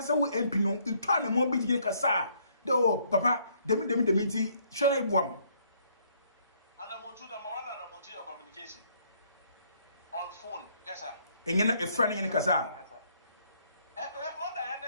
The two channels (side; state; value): both; inverted; correlation -0.67